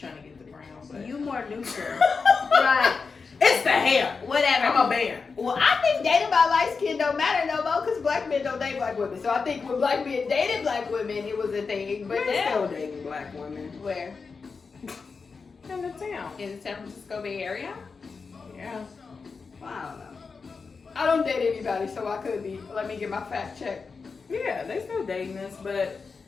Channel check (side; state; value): right; quieter; 4.9 dB